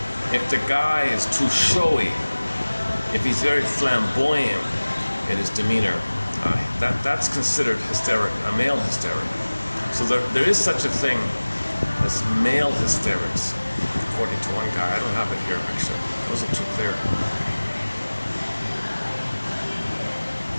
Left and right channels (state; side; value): inverted; both; correlation -1.00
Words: if the guy is too showy, if he's very flamboyant in his demeanor, that's considered hysteric, a male hysteric. So there is such a thing as male hysterics, according to one guy. I don't have it here, actually. It wasn't too clear.